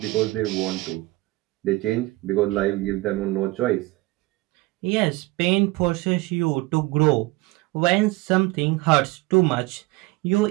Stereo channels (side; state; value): left; quieter; 21.2 dB